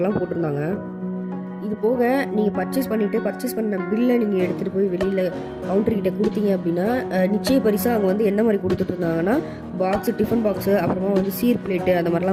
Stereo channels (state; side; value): identical; both; correlation 1.00